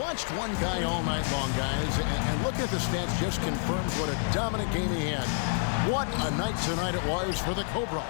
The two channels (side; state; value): right; silent; 59 dB below the other